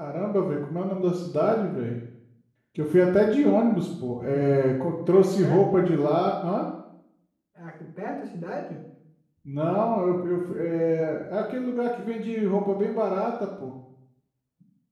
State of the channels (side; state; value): both; identical; correlation 1.00